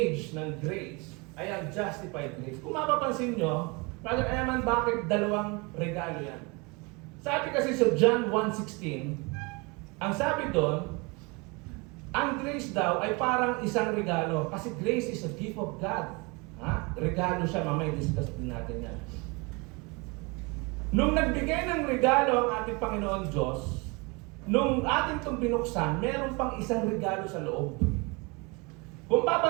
ng grace ay ang justified grace. Kung mapapansin nyo, Brother Eman, bakit 2 regalo yan? Sabi kasi sa John 1:16, ang sabi doon, ang grace daw ay parang isang regalo. Kasi grace is a gift of God. Regalo siya, mamaya discuss din natin yan. Nung nagbigay ng regalo ang ating Panginoon Diyos, nung ating itong binuksan, meron pang isang regalo sa loob. Kung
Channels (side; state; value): left; quieter; 28.3 dB